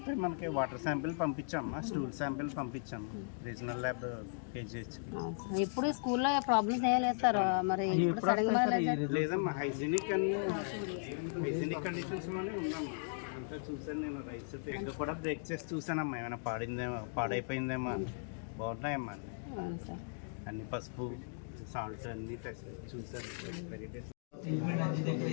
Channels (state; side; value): silent; right; digital silence